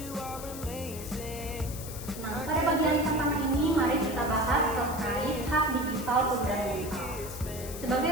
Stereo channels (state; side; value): noise; left; hiss, 12 dB below the sound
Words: Pada bagian pertama ini, mari kita bahas terkait hak digital fundamental.